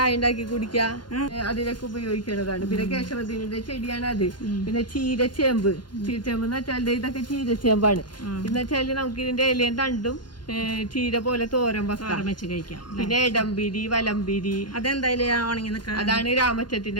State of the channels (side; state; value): right; late; 0.71 ms